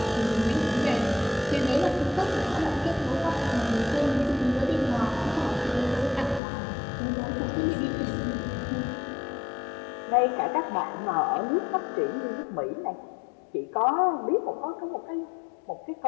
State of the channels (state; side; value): drops out; right; at 6.4 s